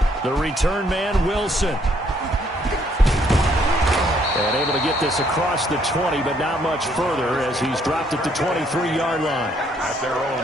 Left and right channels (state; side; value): normal; both; correlation 0.68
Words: The return man, Wilson. And able to get this across the 20, but not much further as he's dropped at the 23-yard line. At their own